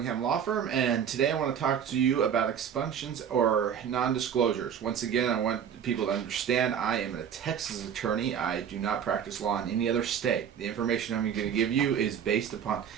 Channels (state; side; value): quieter; left; 8.3 dB